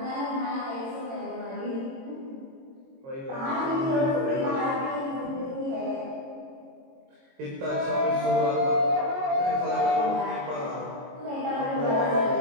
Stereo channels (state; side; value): late; left; 22 ms